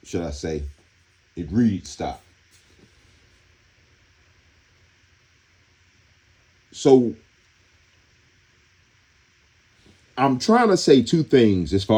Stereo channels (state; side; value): identical; both; correlation 1.00